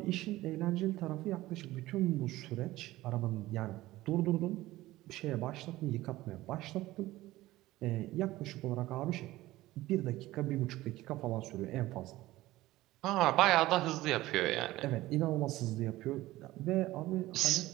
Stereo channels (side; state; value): left; quieter; 17.2 dB